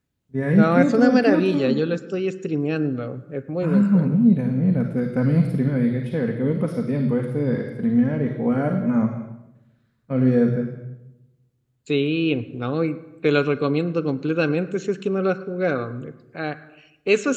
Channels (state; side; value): identical; both; correlation 1.00